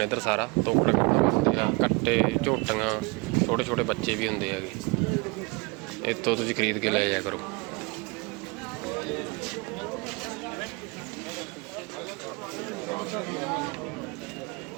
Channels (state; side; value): quieter; left; 28.0 dB